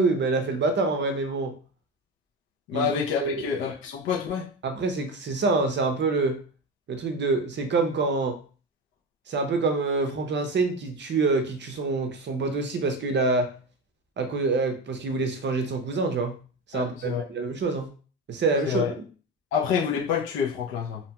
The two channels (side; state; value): both; normal; correlation 0.21